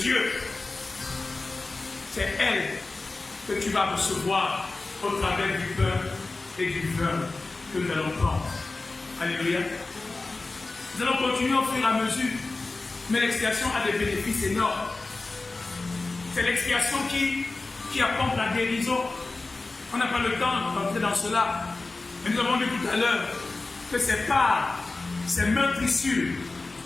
Dieu, c'est elle que tu vas recevoir au travers du pain et du vin que nous allons prendre. Alléluia. Nous allons continuer au fur et à mesure, mais l'expiation a des bénéfices énormes. C'est l'expiation qui apporte la guérison. On n'a pas le temps d'entrer dans cela, mais nous avons dit tout à l'heure que c'est par ces meurtrissures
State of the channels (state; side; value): quieter; right; 3.4 dB